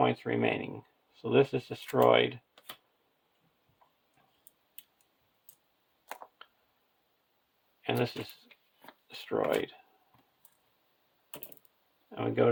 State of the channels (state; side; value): identical; both; correlation 1.00